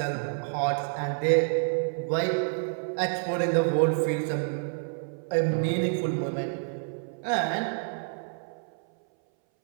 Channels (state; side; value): silent; left; 59 dB below the other